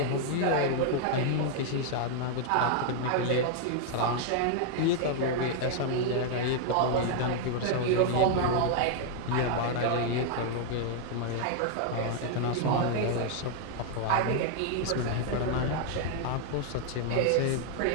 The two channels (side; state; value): both; different; correlation 0.00